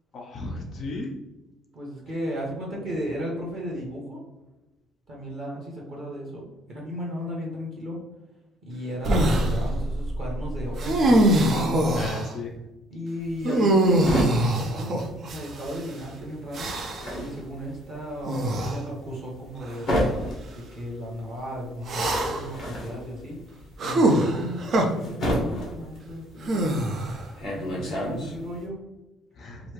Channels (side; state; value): both; normal; correlation 0.60